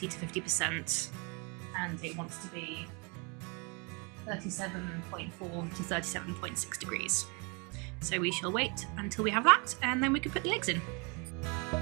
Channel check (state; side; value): quieter; left; 31.6 dB